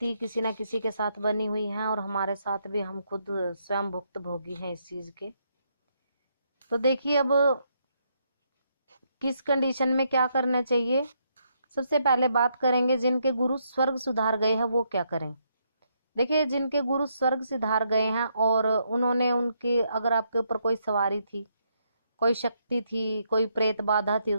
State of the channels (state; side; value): inverted; both; correlation -0.76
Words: किसी न किसी के साथ बनी हुई है और हमारे साथ भी, हम खुद स्वयं भुक्त भोगी हैं इस चीज के। तो देखिए, अब किस कंडीशन में क्या करना चाहिए। सबसे पहले बात करेंगे जिनके गुरु स्वर्ग सुधार गए हैं वो क्या करें। देखिए, जिनके गुरु स्वर्ग सिधार गए हैं और उन्होंने उनके, अगर आपके ऊपर कोई सवारी थी, कोई शक्ति थी, कोई प्रेत बाधा थी,